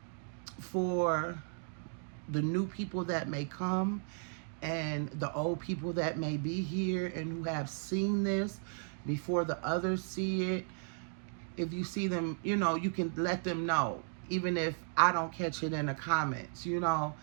for the new people that may come and the old people that may be here and who have seen this before the others see it, if you see them, you can let them know, even if I don't catch it in the comments,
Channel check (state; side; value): silent; left; 54 dB below the other